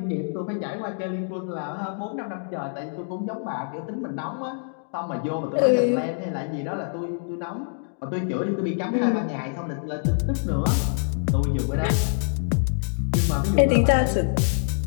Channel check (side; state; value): right; silent; digital silence